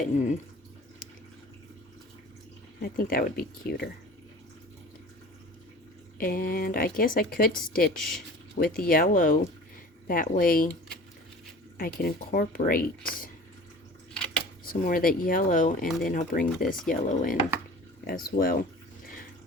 I think that would be cuter. And I guess I could stitch with yellow. That way I can incorporate some more of that yellow, and then I'll bring this yellow in as well.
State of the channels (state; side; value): normal; both; correlation 0.42